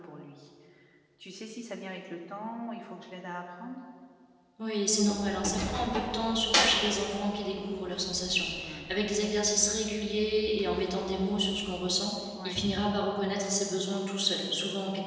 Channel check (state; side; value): identical; both; correlation 1.00